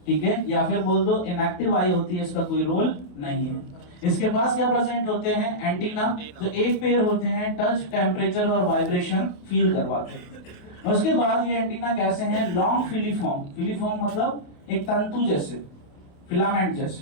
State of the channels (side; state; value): right; late; 28 ms